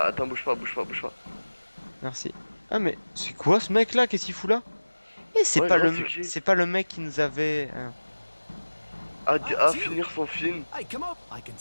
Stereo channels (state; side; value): inverted; both; correlation -1.00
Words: attends, bouge pas, bouge pas, bouge pas. Merci. Ah mais c'est quoi ce mec là? Qu'est-ce qu'il fout là? Et c'est Ouais, pas gros, le c'est qui? c'est pas le mec qui nous avait À finir son film.